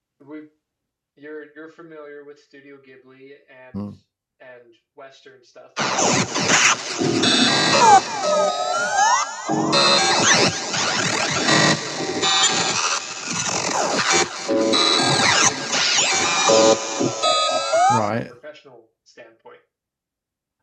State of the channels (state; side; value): identical; both; correlation 1.00